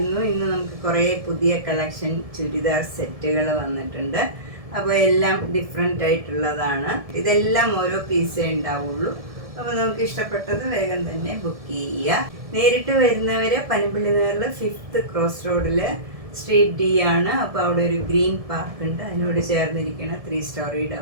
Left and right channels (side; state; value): left; late; 1.7 ms